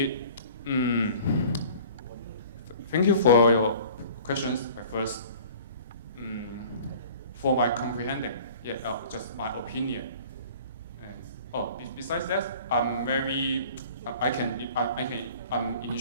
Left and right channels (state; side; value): inverted; both; correlation -0.46